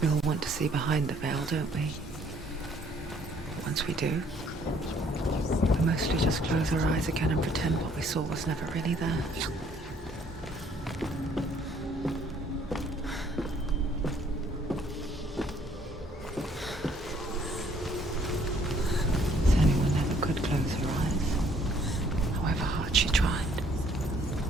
all want to see behind the veil, don't we? Once we do, we mostly just close our eyes again and pretend what we saw was never really there. Senua never could close her eyes, however hard she tried.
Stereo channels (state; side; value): normal; both; correlation 0.63